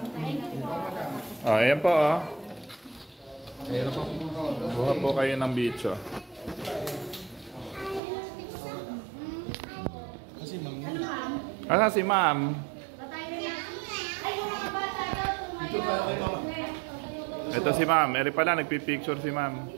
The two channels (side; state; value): left; drops out; at 8.0 s